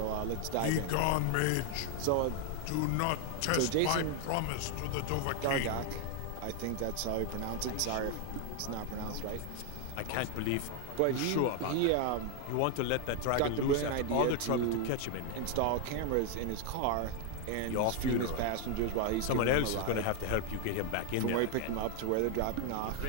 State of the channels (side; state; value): both; different; correlation 0.01